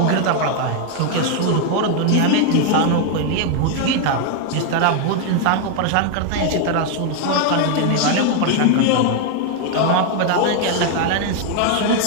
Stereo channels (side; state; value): both; different; correlation 0.00